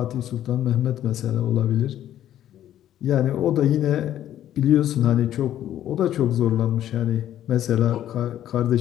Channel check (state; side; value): quieter; right; 11.7 dB